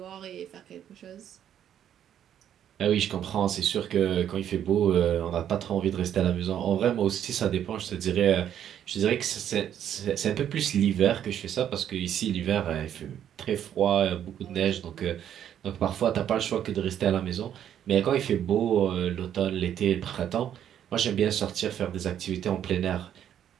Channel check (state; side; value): quieter; left; 10.0 dB